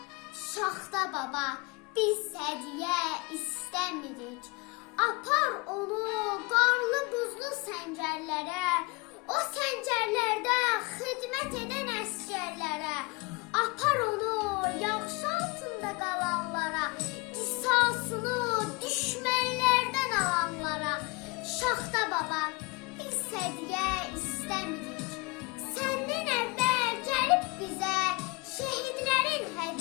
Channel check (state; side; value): quieter; right; 26.8 dB